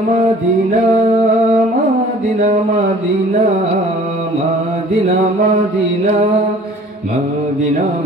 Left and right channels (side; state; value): both; normal; correlation 0.50